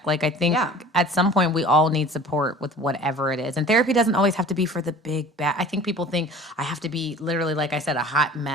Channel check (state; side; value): normal; both; correlation 0.45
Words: Like, I think at some point we all need support with whatever it is. And therapy doesn't always have to be for the big bad. I think people think I have to be literally, like I said, a hot